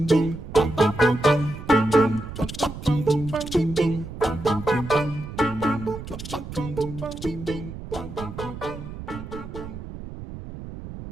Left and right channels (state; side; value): noise; right; rumble, 11 dB below the sound